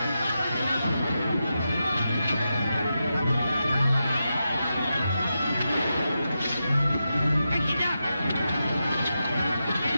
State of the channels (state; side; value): inverted; both; correlation -0.88